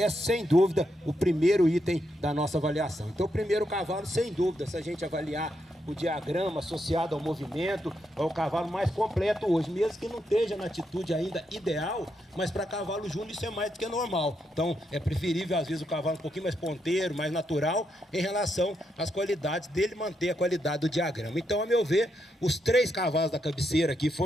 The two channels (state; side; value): normal; both; correlation 0.81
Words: é sem dúvida o primeiro item da nossa avaliação. Então o primeiro cavalo, sem dúvida, se a gente avaliar o diagrama associado ao movimento, é o cavalo mais completo hoje, mesmo que não esteja na atitude ainda ideal, mas para cavalo júnior isso é mais do que normal. Então é preferível às vezes o cavalo um pouquinho mais ponteiro, mais natural, em relação às qualidades dele manter a qualidade do diagrama. Então, a meu ver, os 3 cavalos da cabeceira aqui